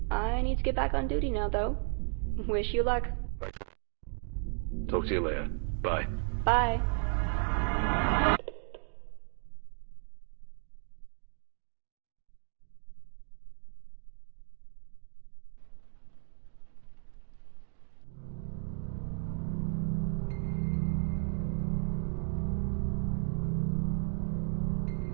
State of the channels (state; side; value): silent; left; 55 dB below the other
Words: I need to get back on duty now, though. Wish you luck. Thanks. Talk to you later. Bye. Bye.